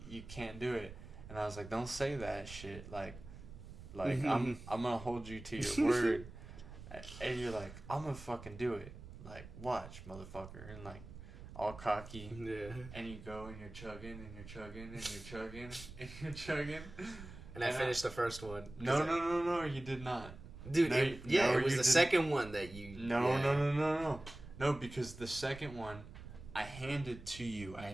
you can't do it. And I was like, don't say that shit. Like I'm gonna hold you to your word. And you're like, I'm gonna fucking do it. Like, watch, motherfucker. And like, all cocky. Yeah. And you go and you're chugging and you're chugging and you're chugging and you're chugging. And I finished the first one. No, you did not. Dude, it was the second one that you... No, because the second one, I handed to you.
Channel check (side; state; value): right; noise; rumble, 14 dB below the sound